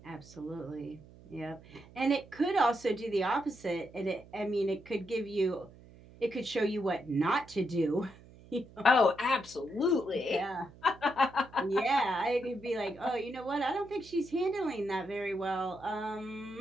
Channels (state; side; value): noise; right; hum, 21 dB below the sound